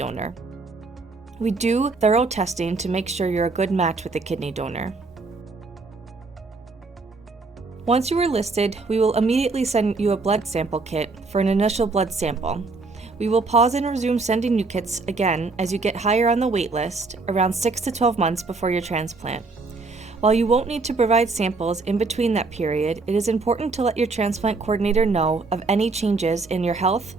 We do thorough testing to make sure you're a good match with the kidney donor. Once you are listed, we will immediately send you a blood sample kit for an initial blood sample. We will pause and resume sending you kits again as you get higher on the wait list, around 6 to 12 months before your transplant. While you won't need to provide samples in between that period, it is important to let your transplant coordinator know of any changes in your health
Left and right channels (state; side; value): quieter; left; 3.8 dB